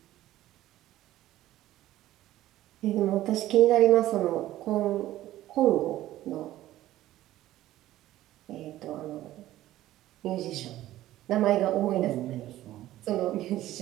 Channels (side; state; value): left; quieter; 14.7 dB